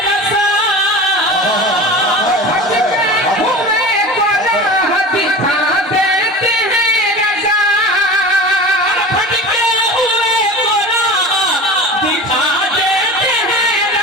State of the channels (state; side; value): normal; both; correlation 0.34